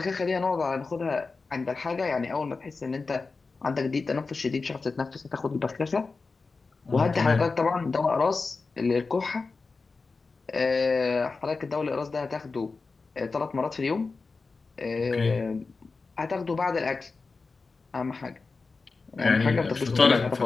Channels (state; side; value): quieter; right; 4.2 dB